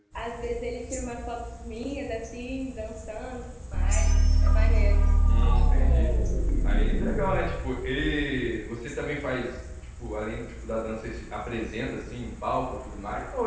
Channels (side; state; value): both; identical; correlation 1.00